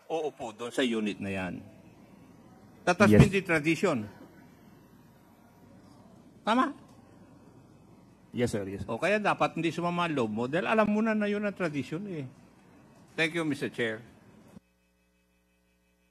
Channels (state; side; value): identical; both; correlation 1.00